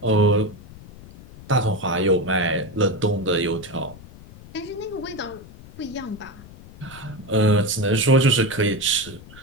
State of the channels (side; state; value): left; noise; rumble, 19 dB below the sound